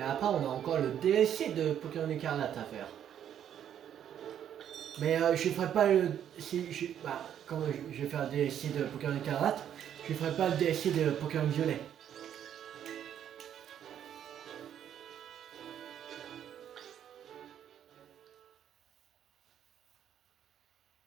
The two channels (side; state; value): left; quieter; 9.8 dB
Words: après, on a encore le DLC de Pokémon Écarlate à faire. Mais je ferai pas le... Quand je vais faire le DLC de Pokémon Écarlate, je ferai pas le DLC de Pokémon Violet.